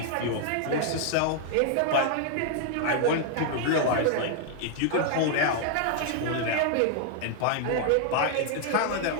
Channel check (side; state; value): both; different; correlation 0.00